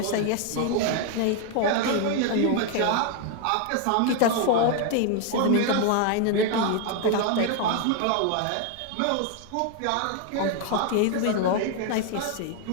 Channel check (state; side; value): different; both; correlation 0.00